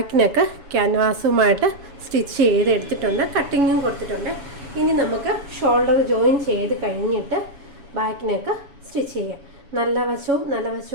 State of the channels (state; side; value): late; left; 7.1 ms